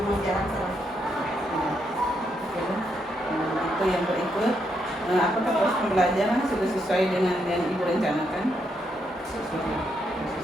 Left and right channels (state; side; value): normal; both; correlation 0.78